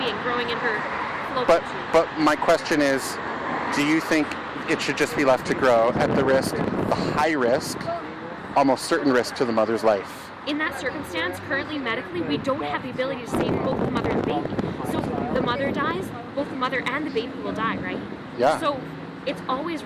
growing in her fallopian tube. But my question is, do you think it should just be left to grow at the high risk, almost certain risk to the mother's life? In that circumstance, currently medically, we don't have the ability to save both the mother and the baby. So if the mother dies, both the mother and the baby will die, right? Yeah. So it's always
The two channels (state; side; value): identical; both; correlation 1.00